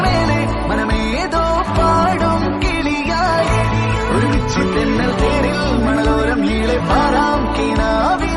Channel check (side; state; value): both; identical; correlation 1.00